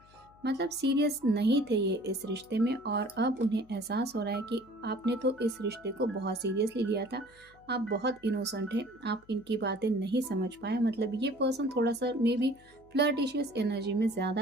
मतलब सीरियस नहीं थे ये इस रिश्ते में, और अब उन्हें एहसास हो रहा है कि आपने तो इस रिश्ते को बहुत सीरियसली लिया था, आप बहुत इनोसेंट हैं, आप इनकी बातें नहीं समझ पाए। मतलब ये पर्सन थोड़ा सा मे बी फ्लर्टिशियस एनर्जी में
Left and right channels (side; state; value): left; noise; hum, 28 dB below the sound